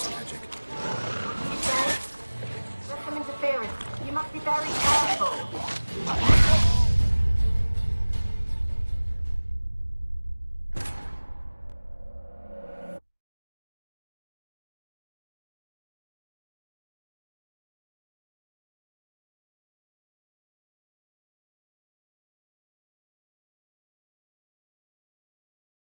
magic. You say? There's some interference. You must be very careful.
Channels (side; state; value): both; inverted; correlation -1.00